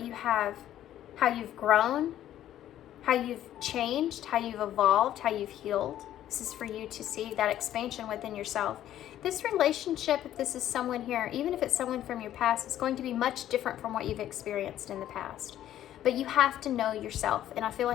you have how you've grown, how you've changed, how you've evolved, how you've healed. This is for you to see that expansion within yourself. This relationship, if this is someone here, even if it's someone from your past, is going to be much different from what you've experienced in the past. But you have to know yourself, and I feel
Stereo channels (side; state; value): right; quieter; 12.1 dB